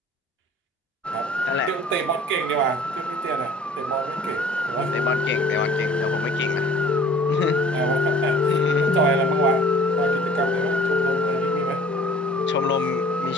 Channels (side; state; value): both; normal; correlation 0.49